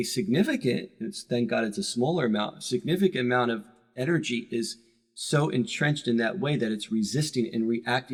significant, thank God it's a smaller amount, significant amount of energy is so entrenched in that way that it's resisting and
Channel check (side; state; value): both; identical; correlation 1.00